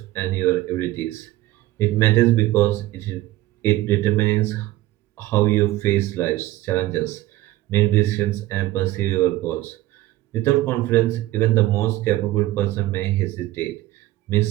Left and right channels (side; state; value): left; quieter; 16.5 dB